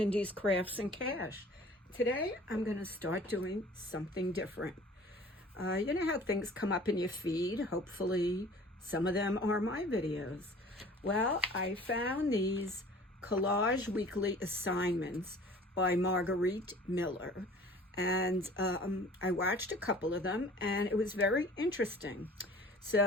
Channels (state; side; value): normal; both; correlation 0.47